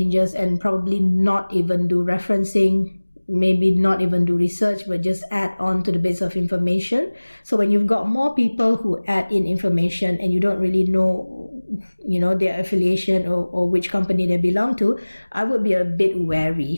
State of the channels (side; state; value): both; inverted; correlation -1.00